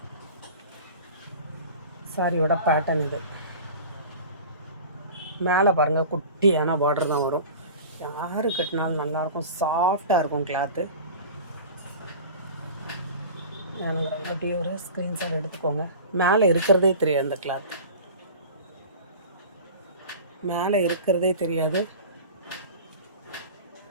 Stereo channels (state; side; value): inverted; both; correlation -0.37